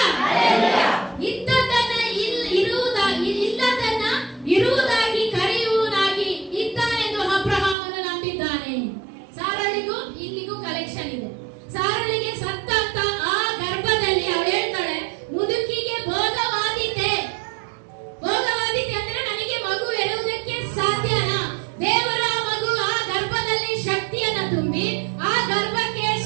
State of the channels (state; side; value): drops out; left; at 7.8 s